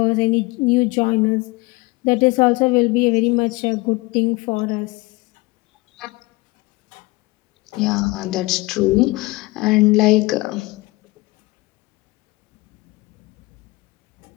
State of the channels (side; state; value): right; quieter; 22.8 dB